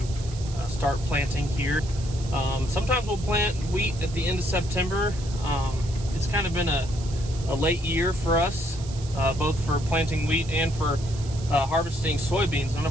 start planting here. Sometimes we'll plant wheat at the end of September. It's kind of been a late year for us, both for planting wheat and for harvesting soybeans. None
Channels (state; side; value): noise; right; hiss, 16 dB below the sound